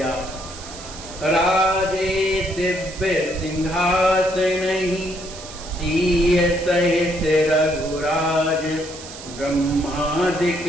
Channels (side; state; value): right; noise; hiss, 14 dB below the sound